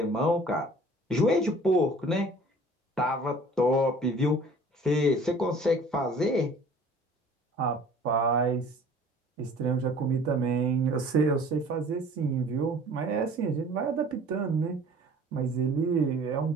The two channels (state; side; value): normal; both; correlation 0.49